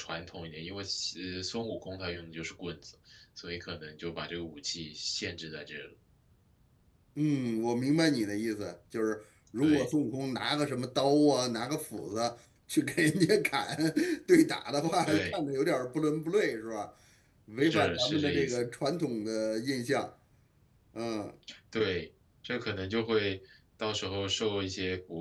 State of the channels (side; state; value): both; identical; correlation 1.00